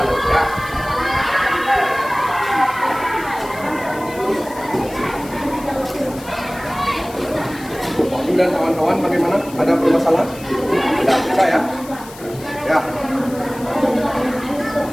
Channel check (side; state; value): left; noise; hiss, 18 dB below the sound